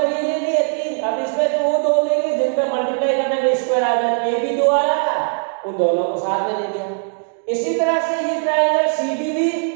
ये ले लिए तीन। अब इसमें तो वो दो लेंगे जिनका मल्टीप्लाई करने में स्क्वायर आ जाए, ए भी दो आ रहा था, उन दोनों को साथ में ले लिया। इसी तरह से ये ट्राइंगल सीडीबी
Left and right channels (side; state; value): left; silent; 66 dB below the other